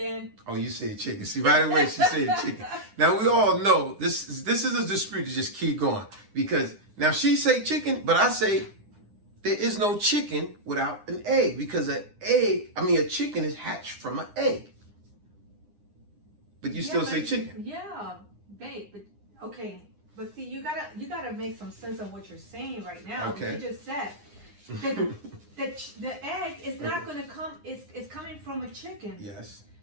Oh, you said chicken. See, right away she said chicken. Now, we all know this is a dispute to just keep going. Because now she say chicken, but I say there is no chicken without an egg. Because a chicken is hatched from an egg. But you still say chicken. Yeah, babe. But okay. But see, you gotta make some sense of what you're saying right now. Okay. You just said the egg is not gonna come. It's coming from a chicken. Yes.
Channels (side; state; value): left; late; 9.8 ms